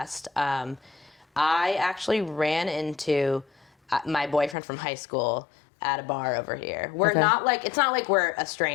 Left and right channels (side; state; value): right; drops out; at 4.5 s